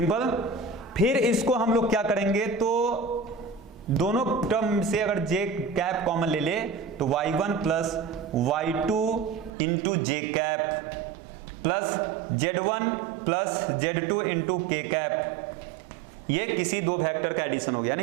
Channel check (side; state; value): left; drops out; at 9.5 s